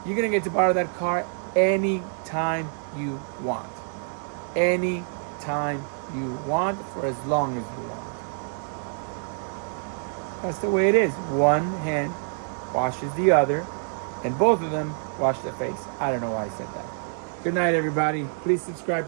you're gonna get to borrow that car anytime you want. Anytime you want, for as long as you want. That's the way it is. One hand washes the other, and both of them wash their face. I don't know why I said that. Good night, everybody. Please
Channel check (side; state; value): left; silent; 59 dB below the other